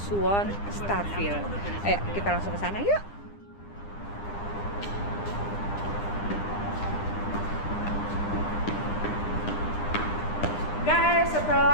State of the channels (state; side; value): late; right; 9.9 ms